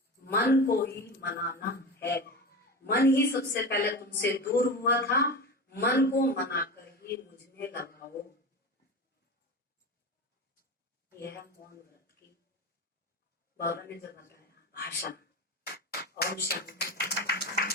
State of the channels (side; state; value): both; normal; correlation 0.26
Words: मन को ही मनाना है। मन ही सबसे पहले तुमसे दूर हुआ था, मन को मनाकर ही मुझ में लगाओ। यह है मौन व्रत की बाबा ने जो बताया भाषा। ओम शांति।